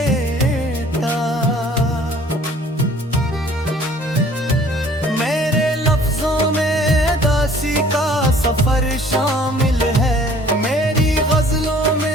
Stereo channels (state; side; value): normal; both; correlation 0.54